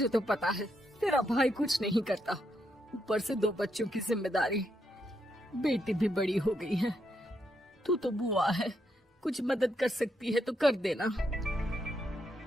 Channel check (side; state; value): both; normal; correlation 0.79